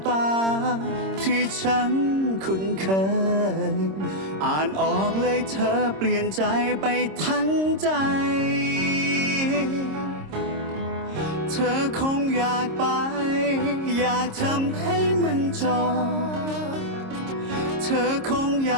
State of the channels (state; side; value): late; left; 26 ms